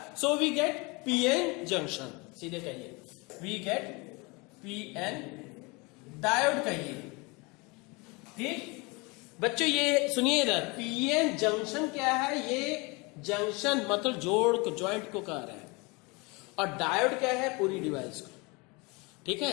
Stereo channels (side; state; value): right; quieter; 27.4 dB